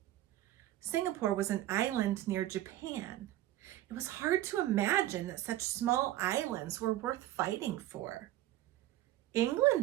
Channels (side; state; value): left; quieter; 14.4 dB